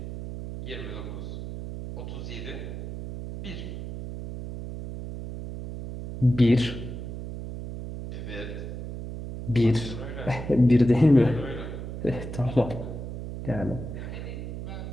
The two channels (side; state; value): right; noise; hum, 8 dB below the sound